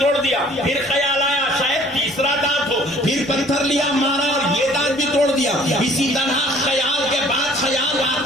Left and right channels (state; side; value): normal; both; correlation 0.55